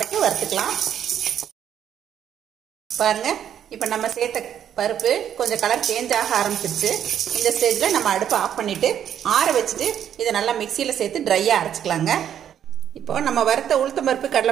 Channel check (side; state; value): left; quieter; 9.6 dB